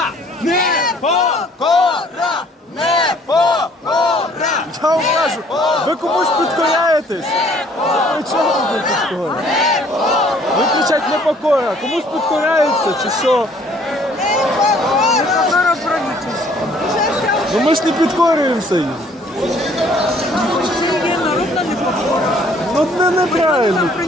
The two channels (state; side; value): normal; both; correlation 0.58